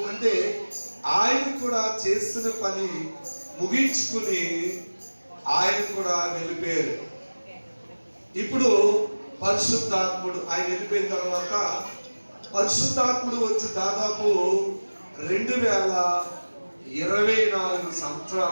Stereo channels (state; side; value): inverted; both; correlation -1.00